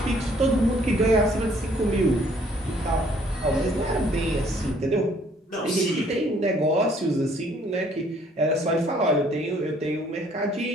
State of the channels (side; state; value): both; normal; correlation 0.61